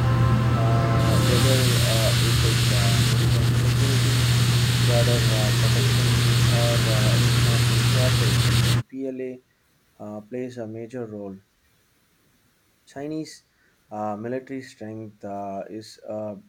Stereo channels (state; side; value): identical; both; correlation 1.00